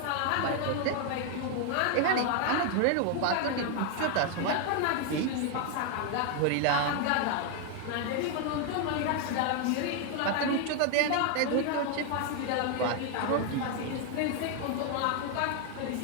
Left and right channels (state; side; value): different; both; correlation 0.01